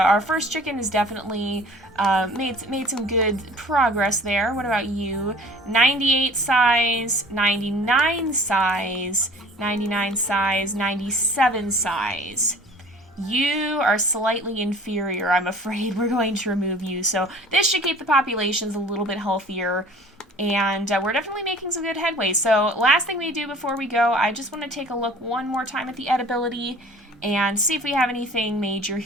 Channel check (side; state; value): both; normal; correlation 0.48